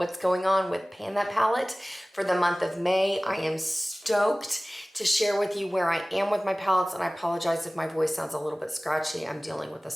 going on with Pan That Palette for the month of May. I am stoked to share with you where I am with my palettes, and I apologize if my voice sounds a little bit scratchy. I'm dealing with a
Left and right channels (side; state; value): both; normal; correlation 0.98